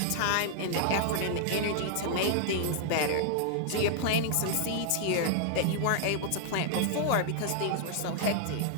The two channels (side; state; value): both; different; correlation 0.00